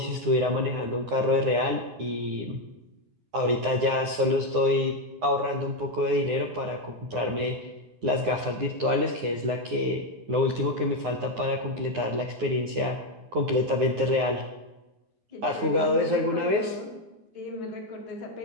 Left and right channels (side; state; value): left; late; 9.7 ms